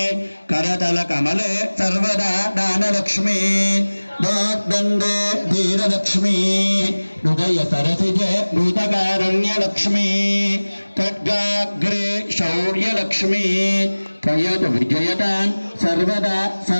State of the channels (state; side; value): inverted; both; correlation -1.00